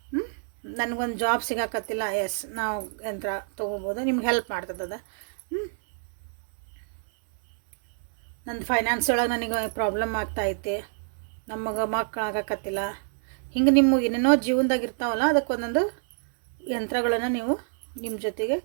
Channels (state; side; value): silent; left; 60 dB below the other